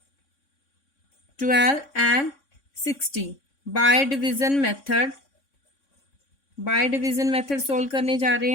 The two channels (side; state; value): right; late; 3.6 ms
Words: 60 bye division method solve करने जा रहे